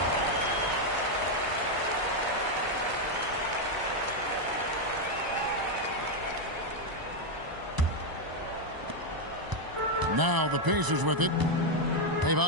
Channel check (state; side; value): late; left; 1.0 ms